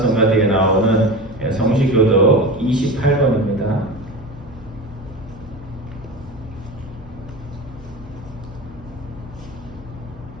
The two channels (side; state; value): both; normal; correlation 0.29